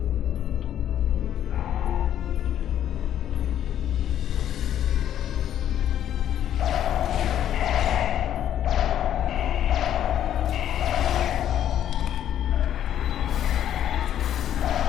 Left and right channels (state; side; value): quieter; right; 10.7 dB